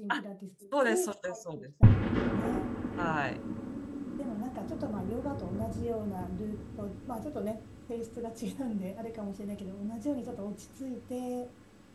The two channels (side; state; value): both; identical; correlation 1.00